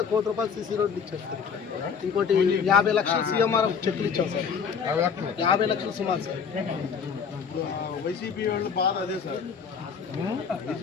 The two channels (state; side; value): quieter; right; 6.4 dB